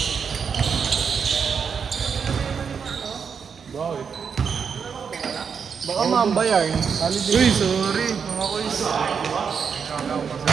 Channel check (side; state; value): left; quieter; 6.5 dB